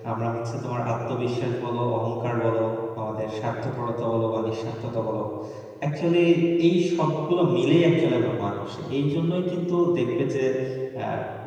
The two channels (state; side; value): identical; both; correlation 1.00